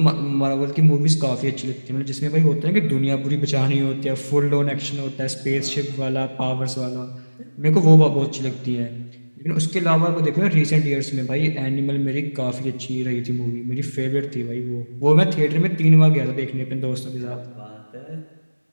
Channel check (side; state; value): both; inverted; correlation -1.00